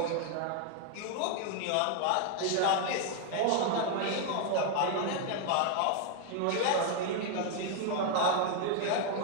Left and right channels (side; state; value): both; different; correlation 0.00